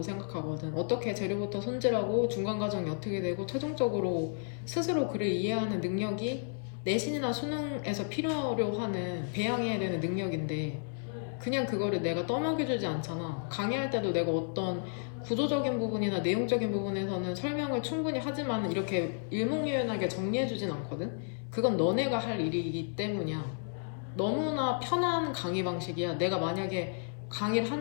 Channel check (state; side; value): silent; right; 56 dB below the other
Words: 생각하거든. 어떻게 재료부터 손질하고 중간 과정이 어떻게 되고 최종적으로 스스로 글을 이해하는 능력이 내신이나 수능에서 필요로 하는 배양해야 되는 능력인데 그냥 그거를 내가 떠먹여주지 않잖아. 강의할 때도 내가 어떤 구조적인 부분이나 내용적인 부분에서는 설명을 충분히 하지만 이렇게 일목요연하게 정리해주진 않거든. 그건 너네가 할 일이기 때문이야. 너무나 편한 강의 방식이야. 내가 만약에 강의를